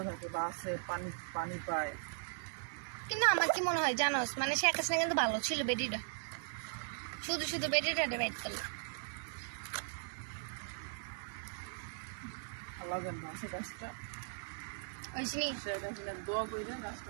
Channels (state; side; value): silent; left; digital silence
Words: থাকে, বাসে পানি পানি পায়। কিন্তু আমার কি মনে হয় জানোস, মানে শেখ হাসিনা কিন্তু ভালো ছিল, বেটিটা শুধু শুধু বেটিটা ডিভাইড করলো। লাগান বাসে গাছটা, ওইসনি শেখ হাসিনা দোয়া করে গাছটা